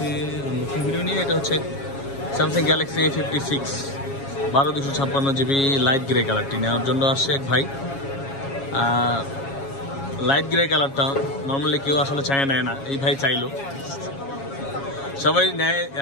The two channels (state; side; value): late; right; 7.3 ms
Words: নতুন ভিডিও নিয়ে। এটা হচ্ছে Samsung Galaxy A56 12/256 GB light grey কালারটি নেওয়ার জন্য আসছে এক ভাই। লাইট গ্রে কালারটা নর্মালি কেউ আসলে নেয় না, এই ভাই চাইলো। সবাই নেয়